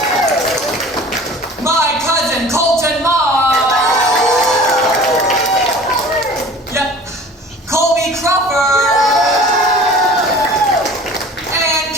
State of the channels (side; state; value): both; normal; correlation 0.44